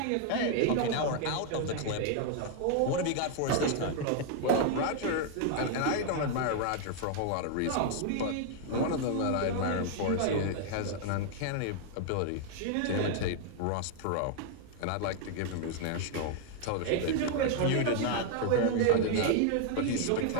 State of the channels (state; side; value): different; both; correlation 0.00